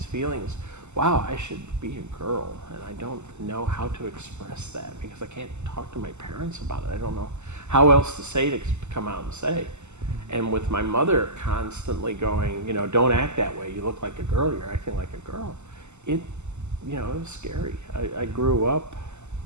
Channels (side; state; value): left; late; 0.83 ms